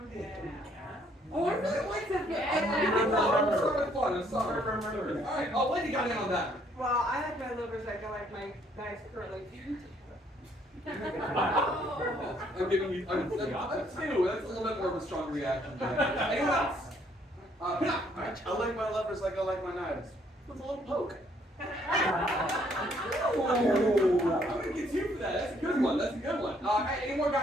Oh, I really like that. I'm sorry. All right. Oh, Lindy got in on that. Well, I like my lovers like I like my guys currently. I'm giving you. I'm two. That's a little bit more of a strong reaction. Anyone else? Pinak. I like my lovers like I like my knives. With a little poke. I'm gonna get two for that. That's a good one. That's a good one. Any more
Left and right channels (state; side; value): normal; both; correlation 0.66